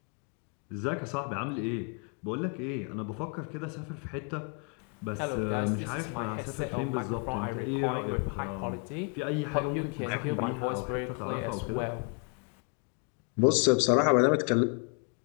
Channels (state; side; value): quieter; right; 37.8 dB